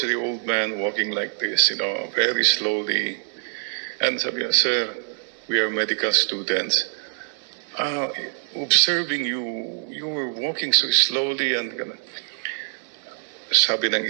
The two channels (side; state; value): left; silent; 62 dB below the other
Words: the old man walking like this, very slowly. And sabi niya, sir, we are medical students. Observing you were walking so slowly and sabi ng